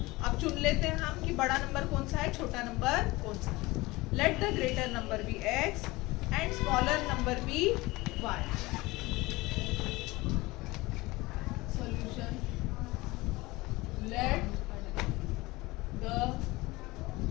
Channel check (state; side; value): quieter; right; 21.3 dB